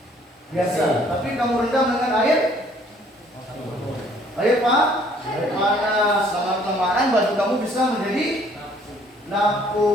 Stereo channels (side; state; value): both; normal; correlation 0.60